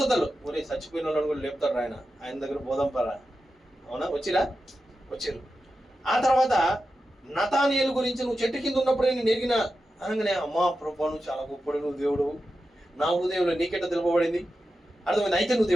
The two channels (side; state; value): both; normal; correlation 0.91